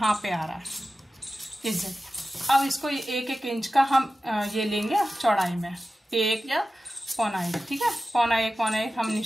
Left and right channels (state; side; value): normal; both; correlation 0.94